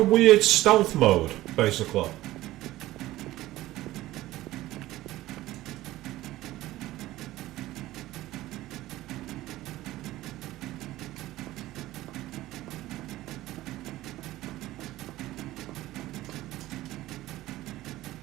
weird stealth mode, basically?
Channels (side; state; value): left; quieter; 16.3 dB